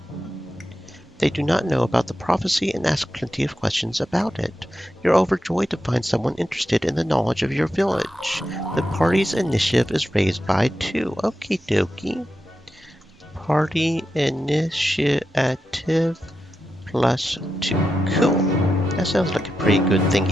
They do not know about the prophecy and ask plenty of questions about it. You're overjoyed to find someone interested in the knowledge of your village. The party's initiative is raised by 2. Okie dokie. Party initiative +2. Cool. That sounds like a pretty good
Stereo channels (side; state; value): both; normal; correlation 0.88